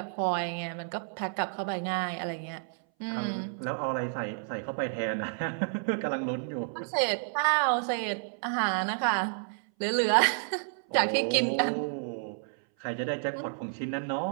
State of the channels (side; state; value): left; silent; 58 dB below the other